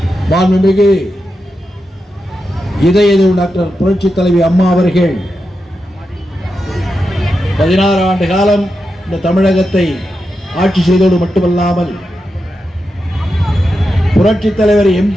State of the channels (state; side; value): normal; both; correlation 0.88